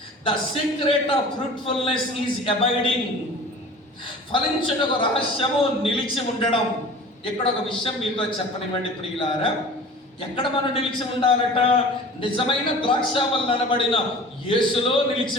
The secret of fruitfulness is abiding. ఫలించుటకు రహస్యము నిలిచి ఉండడం. ఇక్కడ ఒక విషయం మీతో చెప్పనివ్వండి ప్రియులారా. ఎక్కడ మనం నిలిచి ఉండాలట? నిజమైన ద్రాక్షావల్లి అనబడిన యేసులో నిలిచి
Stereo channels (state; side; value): normal; both; correlation 0.41